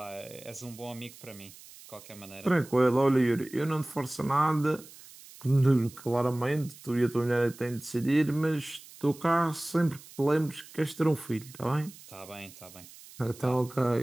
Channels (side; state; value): right; noise; hiss, 20 dB below the sound